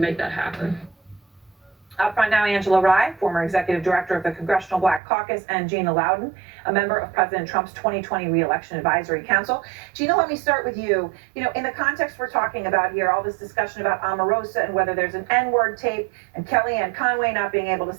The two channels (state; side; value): drops out; left; at 5.0 s